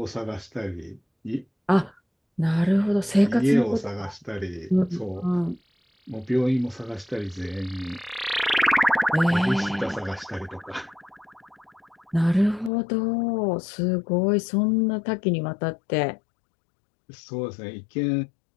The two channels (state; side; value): drops out; right; at 12.7 s